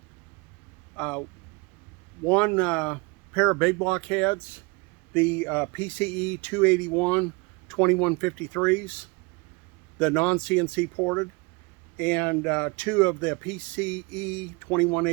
one pair of big block heads, the PCE 281 2153s, the non-CNC ported, and two of the PCE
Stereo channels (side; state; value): left; quieter; 28.3 dB